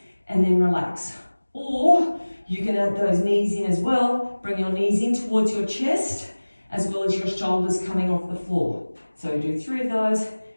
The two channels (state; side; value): inverted; both; correlation -1.00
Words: and then relax. Or you can add those knees in as well, bring your knees in towards your chest, as well as your shoulders coming off the floor. So do 3 of those,